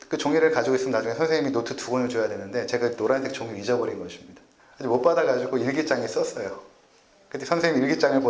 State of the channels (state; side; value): identical; both; correlation 1.00